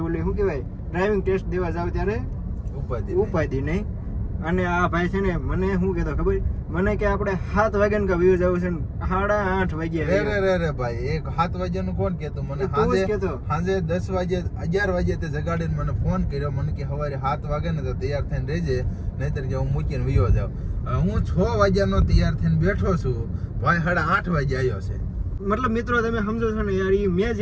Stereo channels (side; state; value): both; identical; correlation 1.00